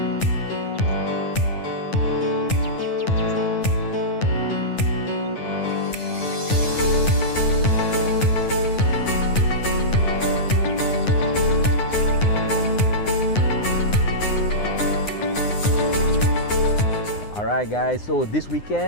Alright guys, so this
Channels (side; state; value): right; late; 9.7 ms